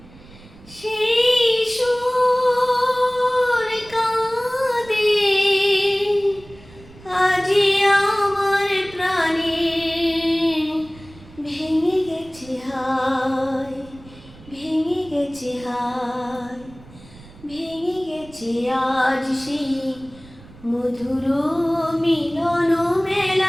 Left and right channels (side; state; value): right; noise; rumble, 22 dB below the sound